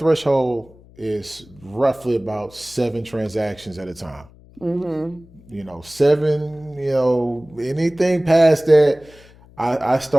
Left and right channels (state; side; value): noise; left; hum, 25 dB below the sound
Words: is roughly about 7 transactions at a time. You know, 7, you know, anything past that, I